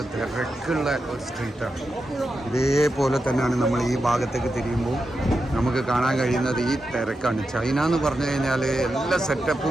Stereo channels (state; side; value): normal; both; correlation 0.88